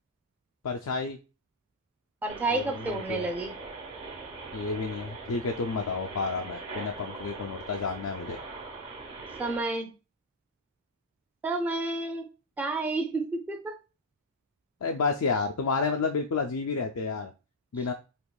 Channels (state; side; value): normal; both; correlation 0.03